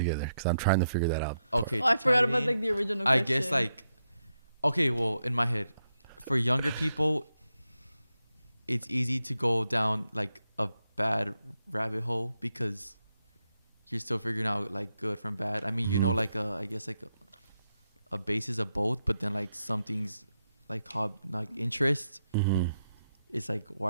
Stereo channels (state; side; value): inverted; both; correlation -0.84